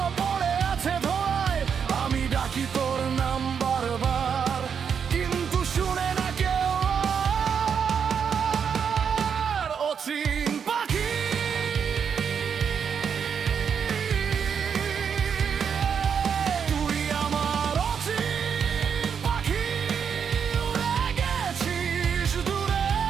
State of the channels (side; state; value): left; quieter; 7.0 dB